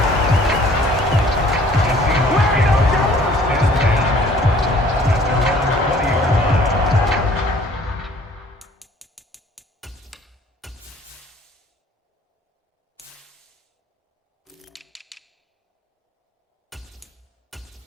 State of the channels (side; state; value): both; normal; correlation 0.55